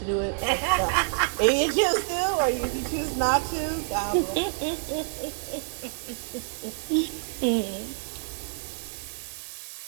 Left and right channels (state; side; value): silent; left; 60 dB below the other